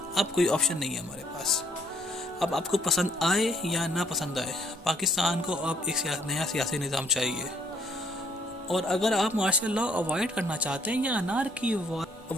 अब कोई ऑप्शन नहीं है हमारे पास। अब आपको पसंद आए या ना पसंद आए, पाकिस्तान को अब एक नया सियासी निज़ाम चाहिए। और अगर आप मार्शल लॉ अवॉइड करना चाहते हैं या अनार्की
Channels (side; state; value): both; normal; correlation 0.66